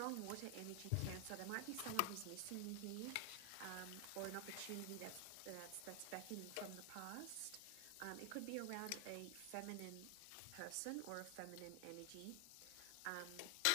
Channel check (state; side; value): different; both; correlation 0.00